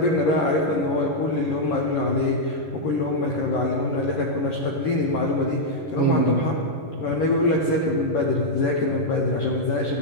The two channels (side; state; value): right; late; 11 ms